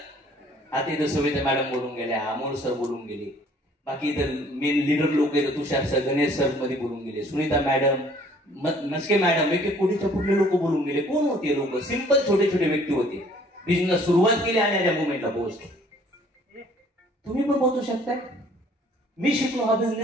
आता इथं सविता मॅडम बोलून गेल्या, अमोल सर बोलून गेले, बाकी इतर मेन लीडर लोक आहेत, तुषार सर, गणेश सर मध्ये बोलून गेले, सुनीता मॅडम, नसके मॅडम, एक कुठेच्या कुठले लोक बोलून गेले. कोण होते लोक? सिंपल छोटे छोटे व्यक्ती होते. बिझनेस सुरुवात केली आणि या मुवमेंटला पोहोचले. तुम्ही पण पोहोचू शकता. मी शिकलो हा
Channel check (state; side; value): normal; both; correlation 0.57